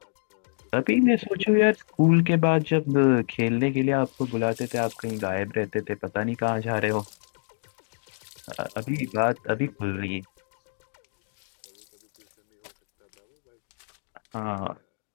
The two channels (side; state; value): right; silent; digital silence